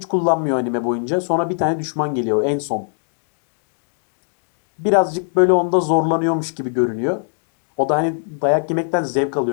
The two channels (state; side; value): silent; right; 57 dB below the other